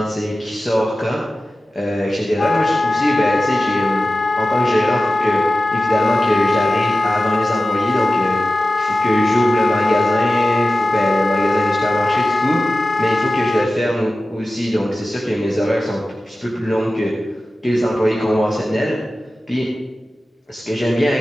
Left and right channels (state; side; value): normal; both; correlation 0.95